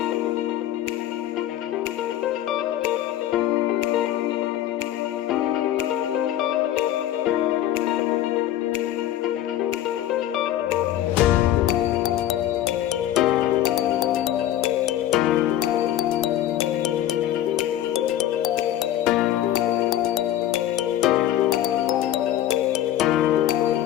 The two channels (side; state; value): right; quieter; 12.4 dB